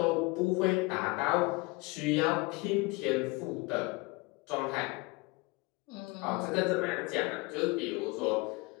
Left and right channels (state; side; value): quieter; right; 25.2 dB